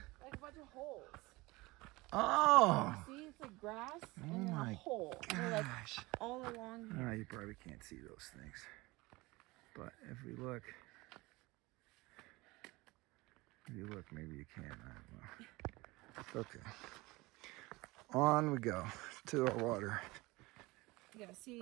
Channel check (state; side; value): quieter; left; 22.1 dB